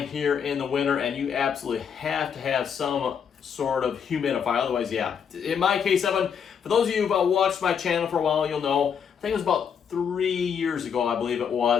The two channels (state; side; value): quieter; right; 7.3 dB